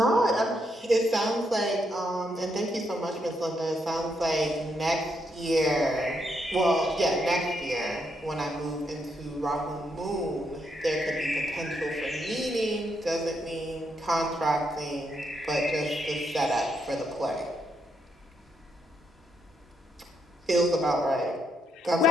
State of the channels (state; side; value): normal; both; correlation 0.78